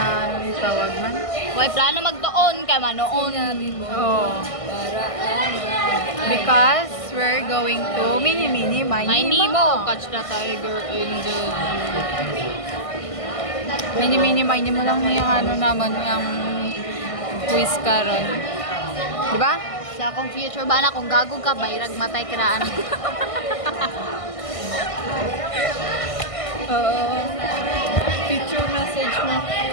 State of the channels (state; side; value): late; right; 1.5 ms